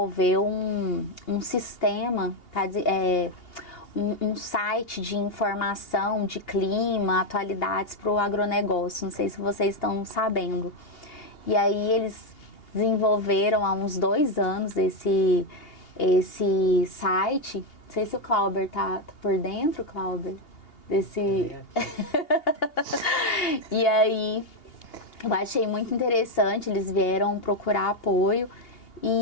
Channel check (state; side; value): late; right; 2.8 ms